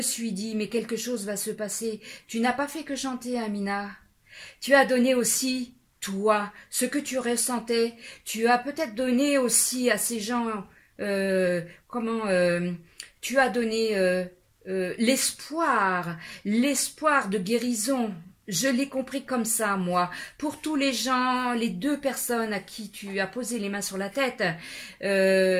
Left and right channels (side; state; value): both; identical; correlation 1.00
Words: suis dit mais quelque chose va se passer. Tu n'as pas fait que chanter, Amina. Tu as donné aussi toi ce que tu ressentais. Tu as peut-être donné aussi à ces gens tu as donné l'espoir de guérison. Je l'ai compris comme ça, moi. Pour tous les gens, les deux personnes à qui tu as posé les mains sur la tête,